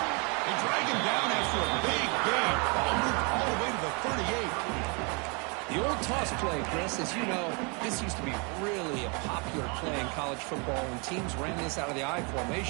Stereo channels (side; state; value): left; quieter; 32.8 dB